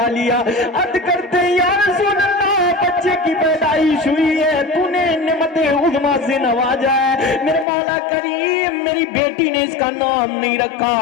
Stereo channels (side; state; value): right; drops out; at 7.7 s